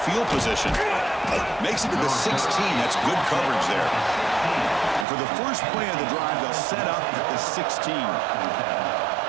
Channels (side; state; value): left; drops out; at 5.1 s